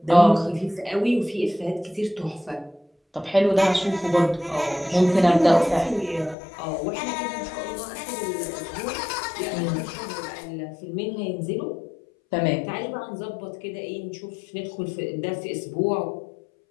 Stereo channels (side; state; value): right; drops out; at 6.4 s